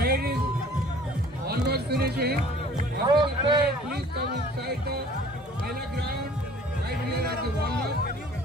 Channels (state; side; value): normal; both; correlation 0.51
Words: is almost finishing. After the parade, please come inside the Mela ground, right here at the walnut,